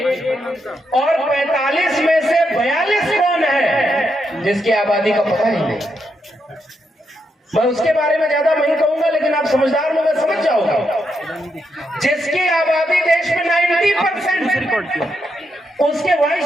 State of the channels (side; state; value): both; normal; correlation 0.81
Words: और 45 में से 42 कौन है जिसकी आबादी का पता ही नहीं? मैं उसके बारे में ज्यादा नहीं कहूंगा, लेकिन आप समझदार लोग समझ जाओगे। जिसकी आबादी देश में 90%, उसके वाइस